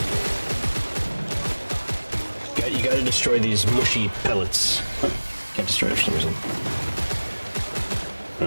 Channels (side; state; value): both; inverted; correlation -1.00